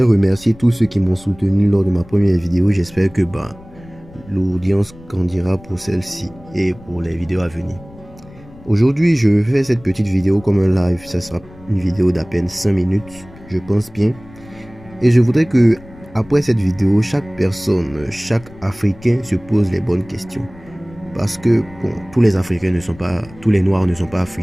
remercier tous ceux qui m'ont soutenu lors de ma première vidéo. J'espère que l'audience grandira pour celle-ci et pour les vidéos à venir. Aujourd'hui, je fais cette petite vidéo comme un live. Ça sera une vidéo d'à peine 5 minutes, je pense bien. Et je voudrais que, après cette vidéo, chaque personne, chaque Africain se pose les bonnes questions. Parce que tous les Africains ne sont pas, tous les Noirs ne sont pas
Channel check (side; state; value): left; noise; rumble, 21 dB below the sound